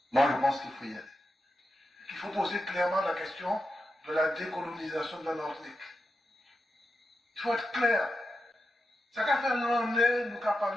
Moi, je pense qu'il faut y aller. Il faut poser clairement la question de la décolonisation de la Martinique. Il faut être clair. Ça qu'a fait l'année, nous qu'a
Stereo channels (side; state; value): both; normal; correlation 0.89